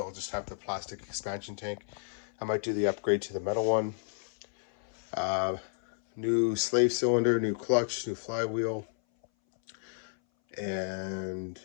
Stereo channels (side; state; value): right; silent; 57 dB below the other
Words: just have the plastic expansion tank. I might do the upgrade to the metal one. New slave cylinder, new clutch, new flywheel, and